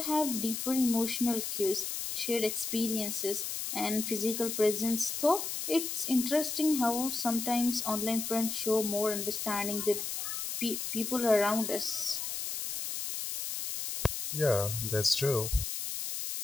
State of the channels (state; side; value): noise; left; hiss, 4 dB below the sound